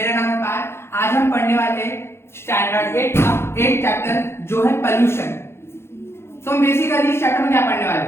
नाम है पार। आज हम पढ़ने वाले स्टैंडर्ड 8 का 8 चैप्टर जो है पोल्यूशन। तो हम बेसिकली इस चैप्टर में क्या पढ़ने वाले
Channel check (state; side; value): late; right; 0.12 ms